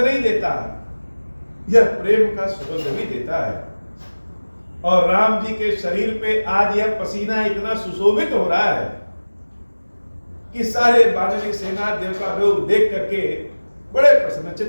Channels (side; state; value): both; inverted; correlation -1.00